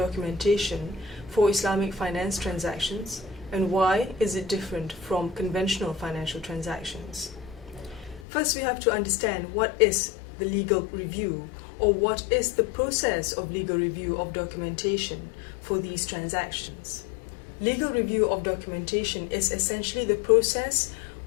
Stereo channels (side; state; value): right; drops out; at 8.2 s